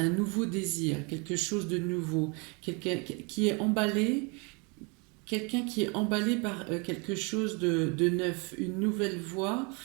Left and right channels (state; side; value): quieter; left; 31.5 dB